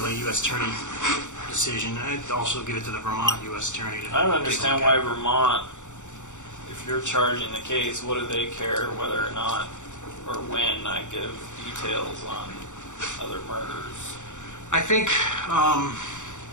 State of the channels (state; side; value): late; right; 0.85 ms